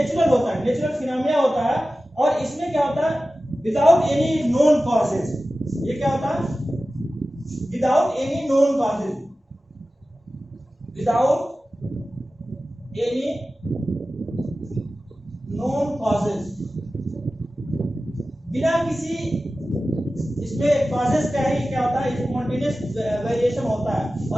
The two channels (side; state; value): both; normal; correlation 0.95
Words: होता है, नेचुरल फिनोमेना होता है, और इसमें क्या होता है विदाउट एनी नोन कॉजेज। ये क्या होता है without any known causes, without any known causes, बिना किसी इसमें कॉजेस का ही क्या होता है स्पॉन्टेनियस वेरिएशन होता है।